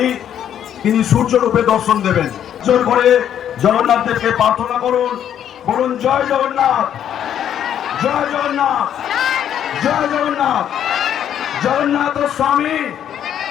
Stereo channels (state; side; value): quieter; right; 9.8 dB